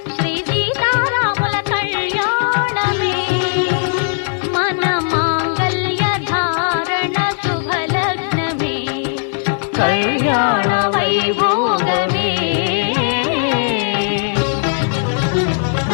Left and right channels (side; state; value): right; silent; 62 dB below the other